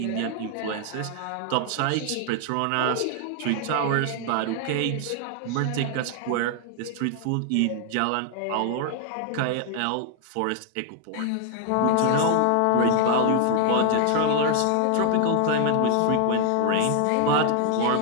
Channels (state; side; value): different; both; correlation 0.00